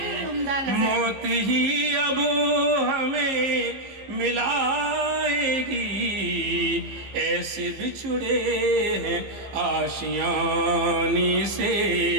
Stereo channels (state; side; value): late; left; 15 ms